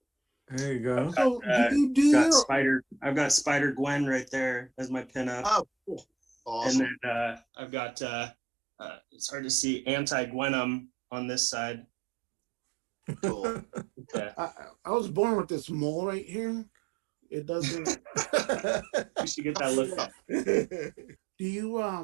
There you go. So I've got Spider Gwen right there as my pinup. Oh, cool. Awesome. And then I've got it's hard to see Anti-Venom on this side. Cool. I was born with this mole right here. It doesn't. You should get that looked at. Do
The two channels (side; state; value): left; drops out; at 7.4 s